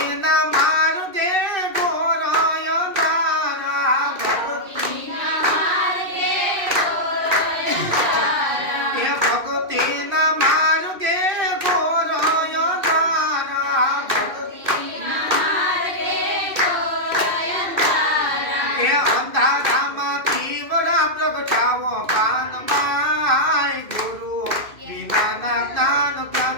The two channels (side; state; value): left; late; 2.5 ms